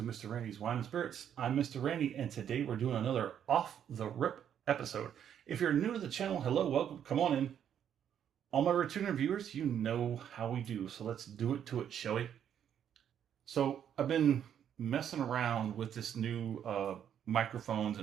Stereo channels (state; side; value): quieter; left; 9.2 dB